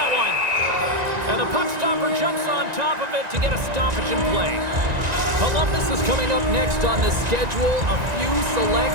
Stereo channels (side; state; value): left; late; 1.9 ms